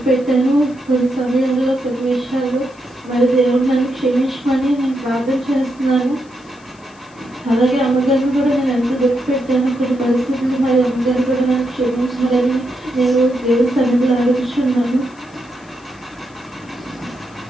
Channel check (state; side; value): noise; left; hiss, 29 dB below the sound